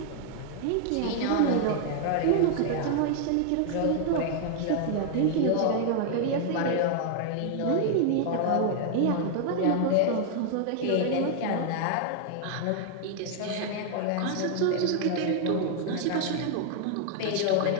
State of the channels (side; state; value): both; different; correlation 0.00